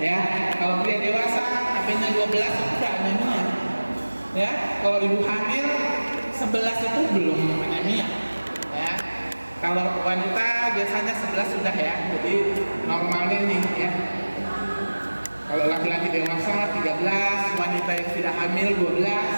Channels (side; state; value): both; inverted; correlation -1.00